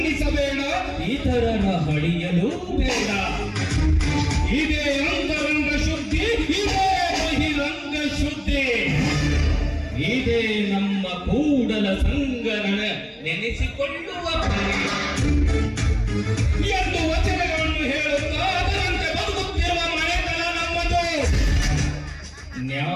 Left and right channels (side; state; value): both; identical; correlation 1.00